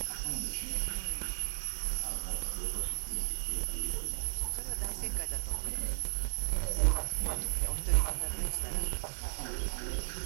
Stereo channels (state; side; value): silent; left; digital silence